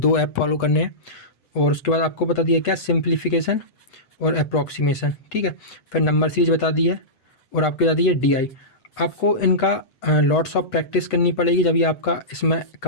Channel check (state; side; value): late; right; 8.0 ms